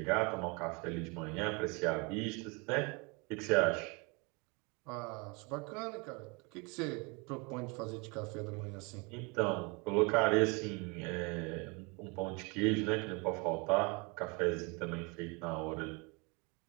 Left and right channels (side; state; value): left; quieter; 29.9 dB